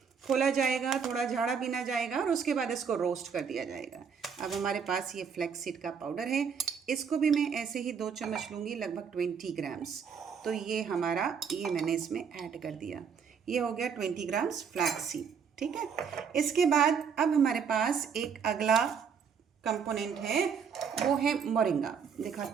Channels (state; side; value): quieter; left; 6.6 dB